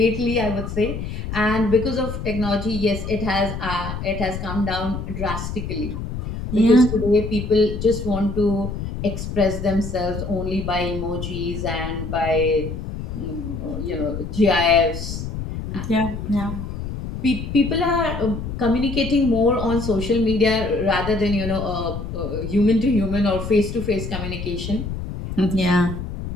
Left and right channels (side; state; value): left; noise; rumble, 6 dB below the sound